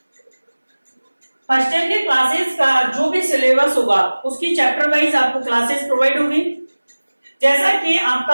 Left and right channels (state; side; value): inverted; both; correlation -1.00